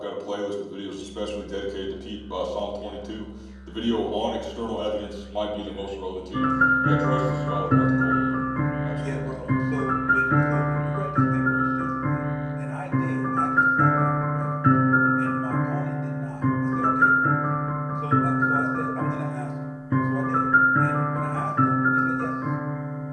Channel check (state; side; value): identical; both; correlation 1.00